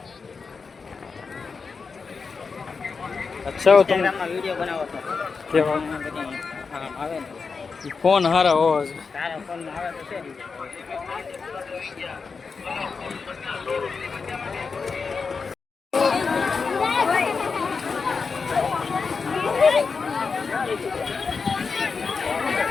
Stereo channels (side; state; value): right; quieter; 5.0 dB